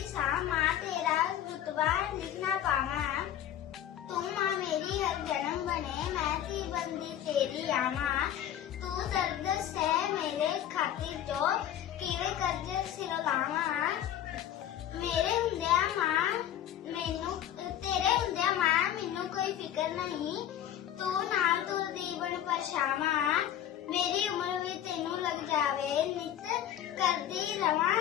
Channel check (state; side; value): quieter; right; 11.0 dB